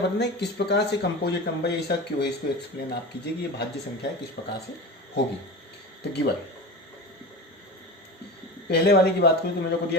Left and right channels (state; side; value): normal; both; correlation 0.29